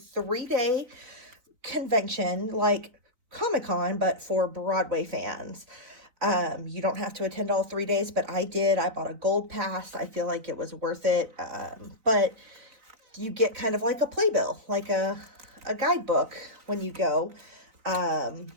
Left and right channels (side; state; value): left; late; 3.9 ms